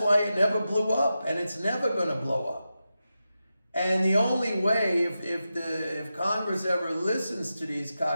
why it never blew up, and it's never going to blow up. And the only way, if Congress ever listens to these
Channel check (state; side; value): inverted; both; correlation -0.90